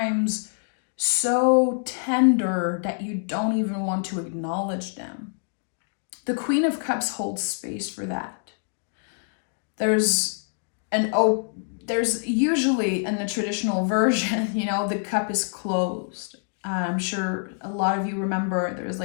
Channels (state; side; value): silent; right; digital silence